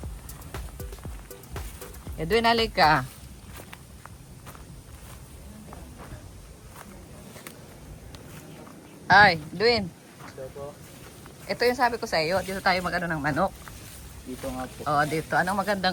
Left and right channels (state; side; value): identical; both; correlation 1.00